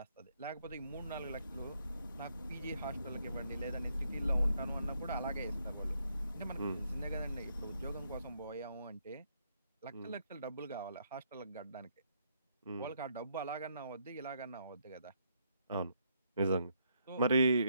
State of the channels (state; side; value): inverted; both; correlation -0.75